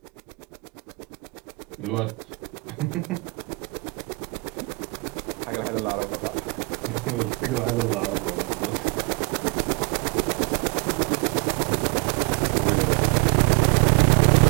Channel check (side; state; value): left; quieter; 28.7 dB